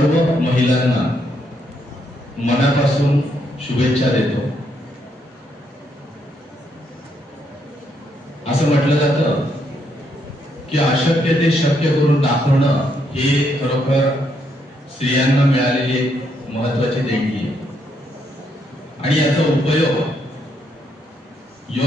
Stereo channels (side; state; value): both; normal; correlation 0.76